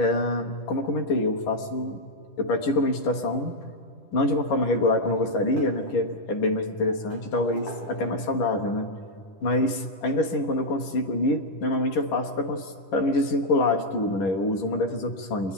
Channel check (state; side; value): late; right; 10 ms